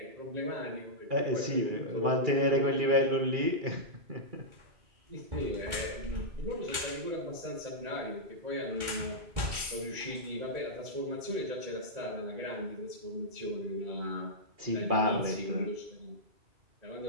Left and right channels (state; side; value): late; left; 2.4 ms